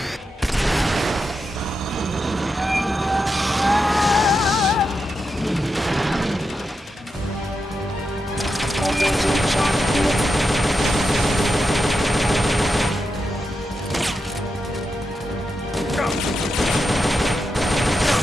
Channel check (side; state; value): both; normal; correlation 0.87